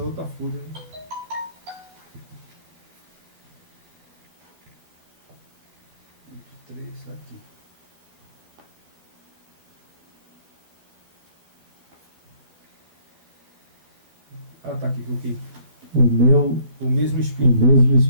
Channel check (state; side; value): late; left; 12 ms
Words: outra folha, né? Aqui. Tá aqui, ok. O mesmo espírito. O mesmo